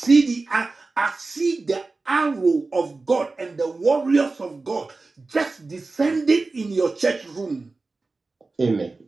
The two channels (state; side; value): quieter; left; 3.6 dB